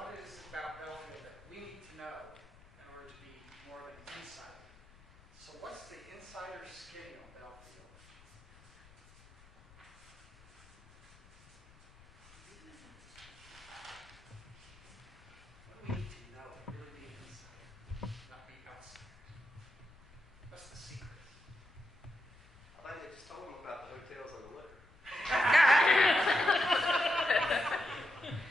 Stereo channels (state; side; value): noise; left; rumble, 24 dB below the sound